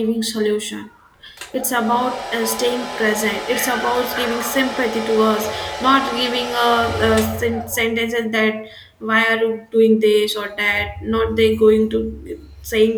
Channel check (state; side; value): identical; both; correlation 1.00